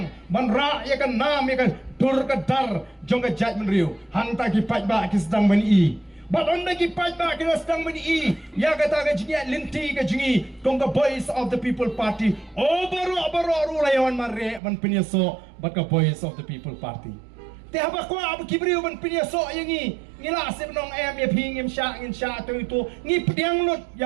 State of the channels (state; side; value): drops out; left; at 14.6 s